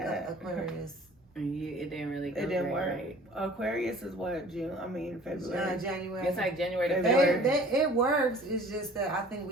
Aquarius. It didn't really go. It didn't work. Right. Aquarius is what, June? I mean, February. January. It's like January to February. It works. It's just that I think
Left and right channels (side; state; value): both; normal; correlation 0.48